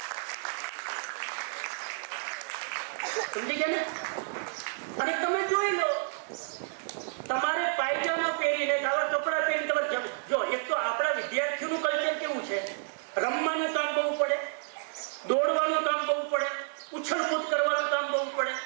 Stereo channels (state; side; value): silent; left; digital silence